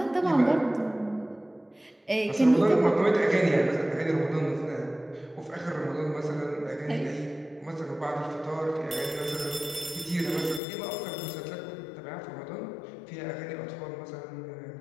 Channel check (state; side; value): drops out; right; at 10.6 s